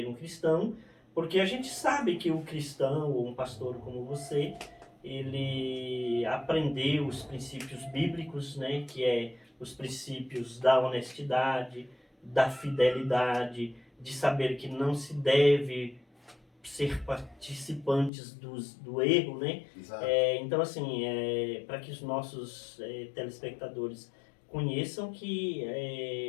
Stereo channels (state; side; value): drops out; right; at 18.1 s